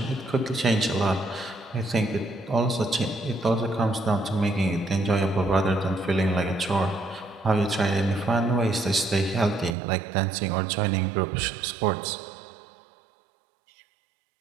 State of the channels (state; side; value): drops out; left; at 9.8 s